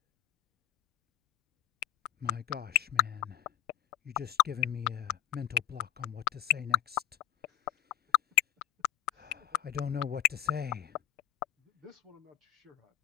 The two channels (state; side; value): quieter; right; 15.1 dB